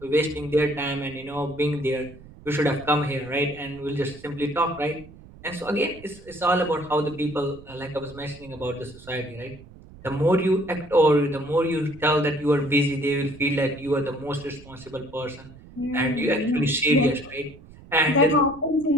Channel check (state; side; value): noise; right; rumble, 20 dB below the sound